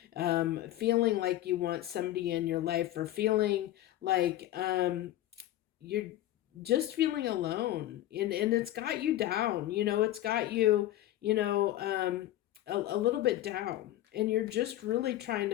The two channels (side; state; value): right; quieter; 14.2 dB